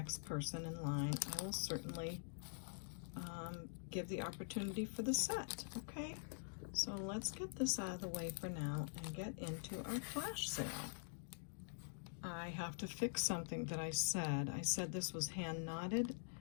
person in line, I will certainly give the opportunity for the set. Okay, so let's get this out of the way for now and get into our flash sale. I have to fix something that I said. I said this was hand knotted,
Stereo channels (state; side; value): silent; right; digital silence